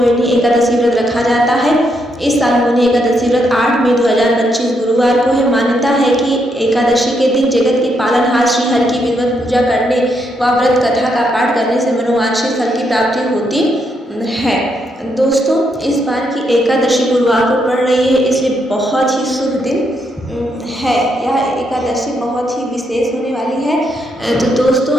एकादशी व्रत रखा जाता है। इस साल मोहिनी एकादशी व्रत 8 मई 2025 गुरुवार को है। मान्यता है कि एकादशी के दिन जगत के पालनहार श्री हरि की विधिवत पूजा करने व व्रत कथा का पाठ करने से मनोवांछित फल की प्राप्ति होती है। दोस्तों, इस बार की एकादशी गुरुवार को पड़ रही है, इसलिए बहुत ही शुभ दिन है। यह एकादशी बहुत ही विशेष होने वाली है। तो दोस्तों,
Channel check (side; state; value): both; normal; correlation 0.78